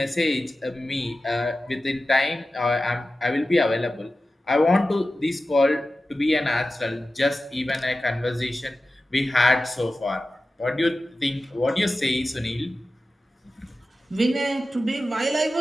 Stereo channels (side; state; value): both; normal; correlation 0.94